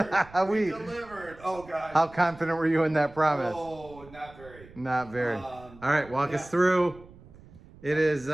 We- delivered. Oh, gosh. How confident were you in that promise? Oh, not very. Not very. All right, walk yeah. us through. It is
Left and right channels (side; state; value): right; noise; rumble, 21 dB below the sound